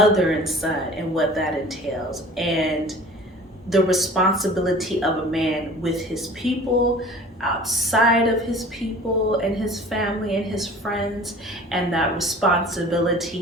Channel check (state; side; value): normal; both; correlation 0.44